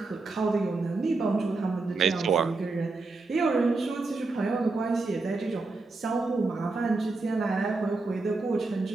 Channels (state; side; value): quieter; left; 3.6 dB